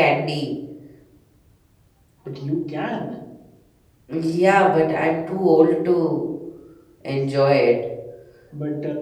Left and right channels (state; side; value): identical; both; correlation 1.00